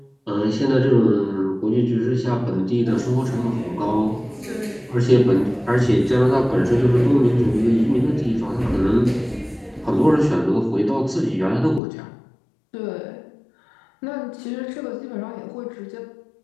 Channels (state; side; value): drops out; right; at 11.8 s